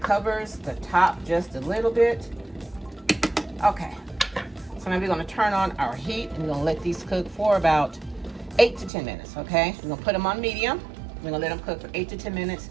covers the top just a little bit? Okay, so now we're gonna turn on our heat and we're gonna let these cook for about 8 to 10 minutes, okay? We're gonna put them on medium. We're gonna let them cook for 8 to 10 minutes.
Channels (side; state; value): left; drops out; at 8.9 s